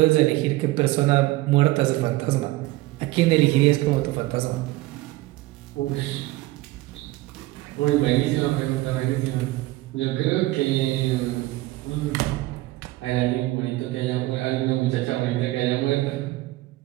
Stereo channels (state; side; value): quieter; left; 18.6 dB